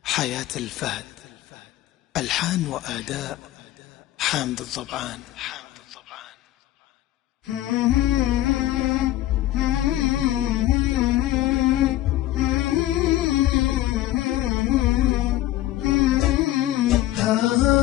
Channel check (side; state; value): right; quieter; 14.8 dB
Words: حياة الفهد، ألحان وأداء حامد الضبعان.